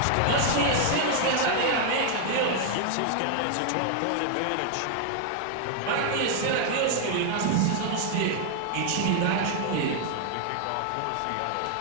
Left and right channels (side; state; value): both; different; correlation 0.00